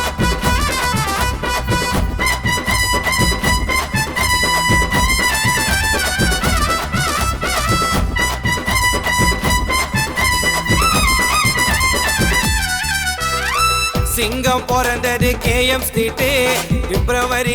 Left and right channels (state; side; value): identical; both; correlation 1.00